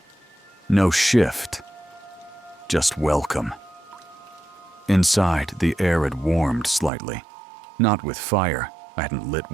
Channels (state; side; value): drops out; left; at 6.9 s